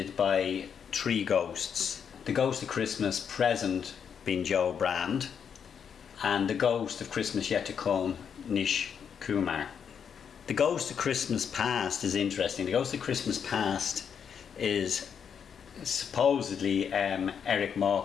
by three ghosts. The Ghost of Christmas Present being Joe Brand, and the Ghost of Christmas Yet to Come, Nish Kumar. The Ghost of Christmas Past is interesting. The Ghost of Christmas Past is supposedly Eric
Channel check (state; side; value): quieter; right; 7.4 dB